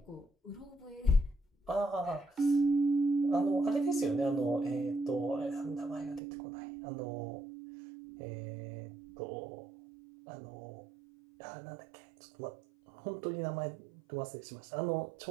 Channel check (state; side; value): drops out; left; at 6.2 s